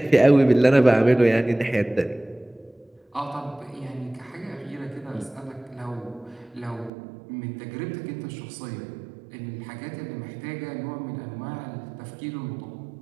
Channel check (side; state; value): left; drops out; at 6.9 s